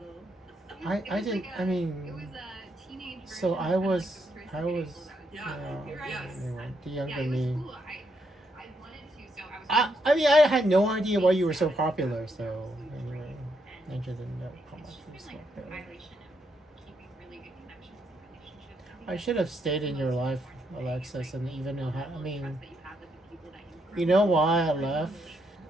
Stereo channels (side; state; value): both; normal; correlation 0.77